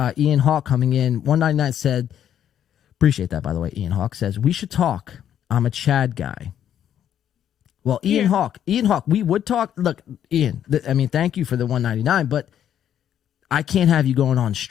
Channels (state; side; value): quieter; right; 10.0 dB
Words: Ian Hawk coming in, 199 said, appreciate that, by the way, Ian Hawk says, we should talk. I'm a Chad guy. Well, Ian Hawk, we would talk. Look, Ian, I mean, thank you for the 199, but I can't have you going on